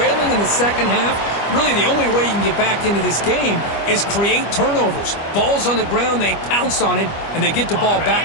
in the second half. Really, the only way you can get back into this game is create turnovers. Ball's on the ground, they pounce on it, and they get the ball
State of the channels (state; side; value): late; right; 25 ms